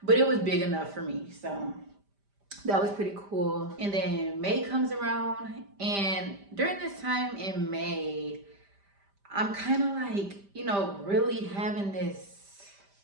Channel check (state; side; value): late; left; 5.0 ms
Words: but it was big enough for me. So that was pretty cool. And then May comes around, and during this time in May, I'm kind of like, you know, really having this